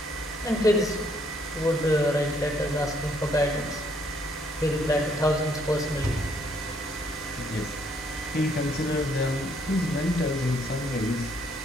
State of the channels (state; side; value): normal; both; correlation 0.68